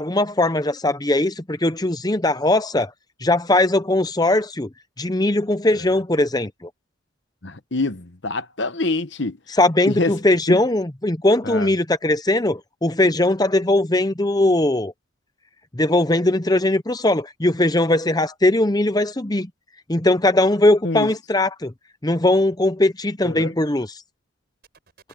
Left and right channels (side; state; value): both; normal; correlation 0.63